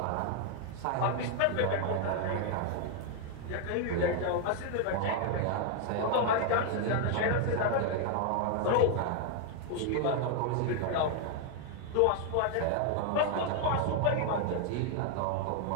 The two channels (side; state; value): both; different; correlation 0.00